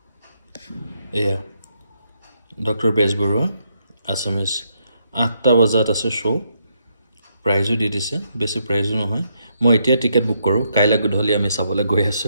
এয়া ডক্টৰ বেজবৰুৱা আসামিজ 8টা বজাত আছে শো প্ৰাইজো দি দিছে বেছি প্ৰাইজো নহয় মই এতিয়া টিকেট বুক কৰো কাইলে গধূলি আমি চাবলৈ গৈ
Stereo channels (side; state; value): both; inverted; correlation -0.77